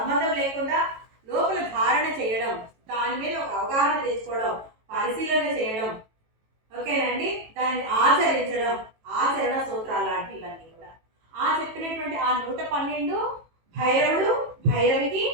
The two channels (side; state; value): left; late; 18 ms